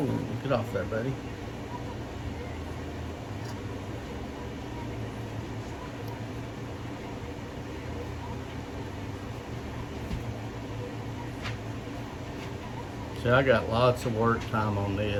get off there, buddy. See, I got lots of work time on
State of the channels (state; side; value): identical; both; correlation 1.00